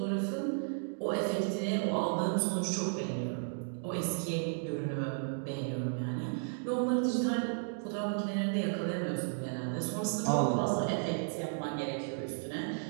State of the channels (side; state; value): left; silent; digital silence